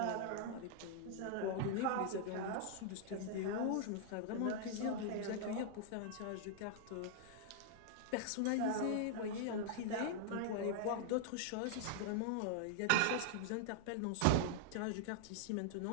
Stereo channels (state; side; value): different; both; correlation -0.01